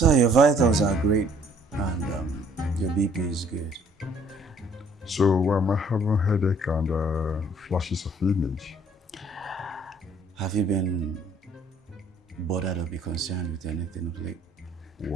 your vitals are great and your BP is good. So I'm having headache and flashes of image. Have you been bothered or be concerned with anything of late?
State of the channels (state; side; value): normal; both; correlation 0.60